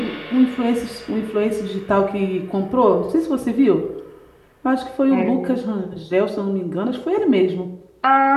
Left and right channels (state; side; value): identical; both; correlation 1.00